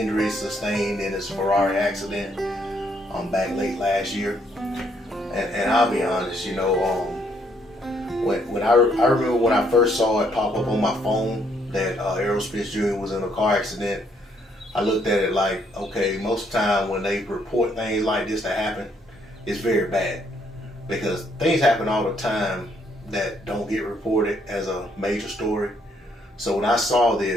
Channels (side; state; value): both; normal; correlation 0.70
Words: sustained in his Ferrari accident back late last year. And I'll be honest, you know, when I remember when I first saw it pop up on my phone that Errol Spence Jr. was in a car accident, I looked at it like, okay, most of the time when they report things like this that happen, it's very bad. Because things happen all the time that don't get reported as a major story. So when I saw